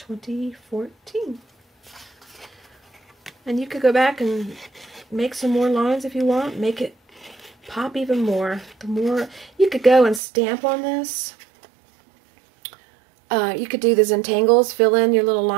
And you could go back and make some more lines if you want. Make it pop even more. The more you could go and stamp on this. You could do the Zentangles, fill in your little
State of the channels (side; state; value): left; drops out; at 10.2 s